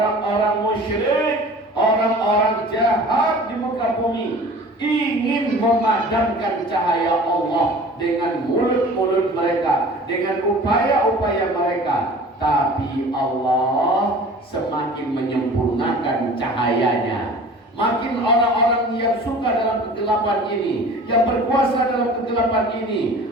musyrik, orang-orang jahat di muka bumi ingin memadamkan cahaya Allah dengan mulut-mulut mereka, dengan upaya-upaya mereka. Tapi Allah semakin menyempurnakan cahayanya. Makin orang-orang yang suka dalam kegelapan ini, yang berkuasa dalam kegelapan ini,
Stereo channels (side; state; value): both; normal; correlation 0.43